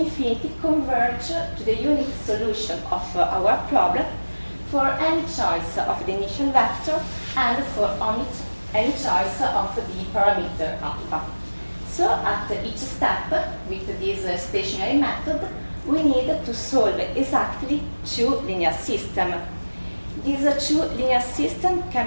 converge to the unique solution of our problem for any choice of the initial vector and for any choice of the parameter alpha. So at each step with this stationary method, we need to solve exactly two linear systems. These two linear systems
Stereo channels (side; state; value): both; inverted; correlation -1.00